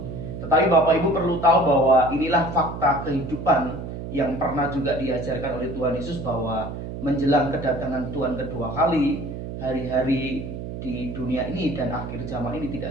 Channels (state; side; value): noise; right; hum, 8 dB below the sound